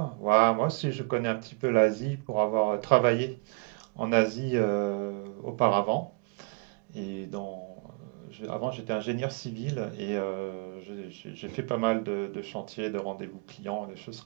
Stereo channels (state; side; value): quieter; left; 30.5 dB